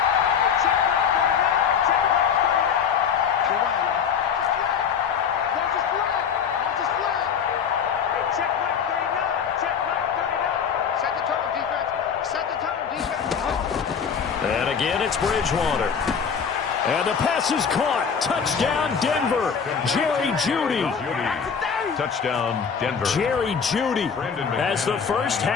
And again, it's Bridgewater. And the pass is caught. Touchdown, Denver. Jerry Jeudy. Touchdown, Denver. Jerry Jeudy as the first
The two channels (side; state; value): right; quieter; 6.9 dB